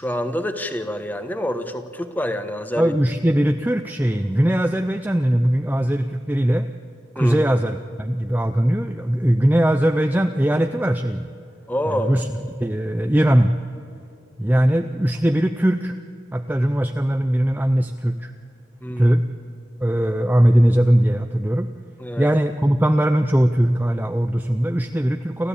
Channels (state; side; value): normal; both; correlation 0.96